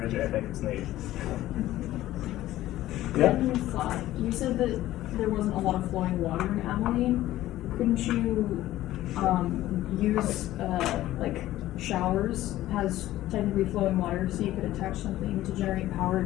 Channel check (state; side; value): quieter; right; 14.9 dB